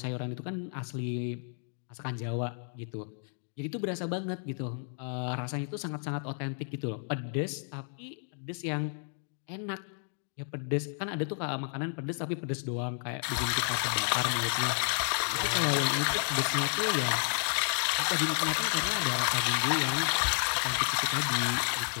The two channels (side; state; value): right; silent; 57 dB below the other